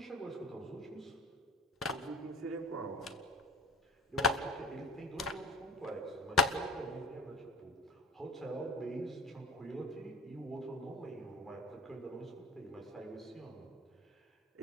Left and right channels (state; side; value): normal; both; correlation 0.39